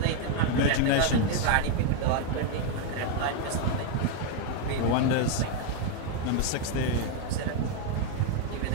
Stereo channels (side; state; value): both; different; correlation 0.00